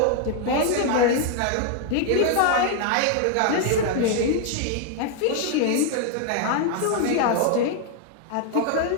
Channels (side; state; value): both; different; correlation 0.00